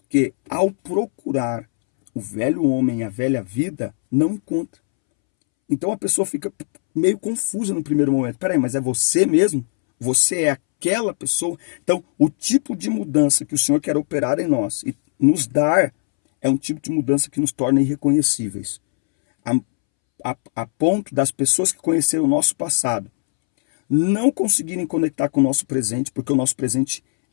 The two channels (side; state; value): right; silent; 66 dB below the other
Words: ao procurar o velho homem e a velha vida, não encontra. Então a pessoa fica meio confusa no primeiro momento. Peraí, mas é você mesmo? Você é aquela pessoa? Então, o tipo de mudança que o Senhor quer operar em nós e nos dar é um tipo de mudança que nos torna irreconhecíveis. A ponto das pessoas que conheceram o nosso passado não conseguirem conectar com o nosso presente, porque o nosso presente